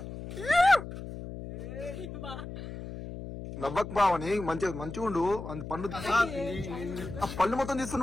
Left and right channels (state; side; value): noise; left; hum, 10 dB below the sound